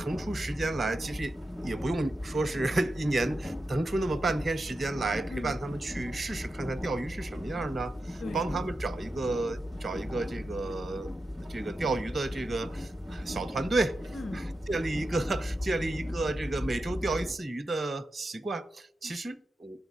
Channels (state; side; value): normal; both; correlation 0.90